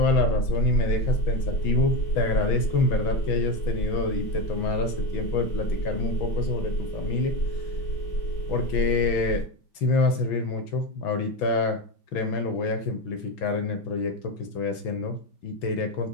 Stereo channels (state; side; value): late; right; 6.1 ms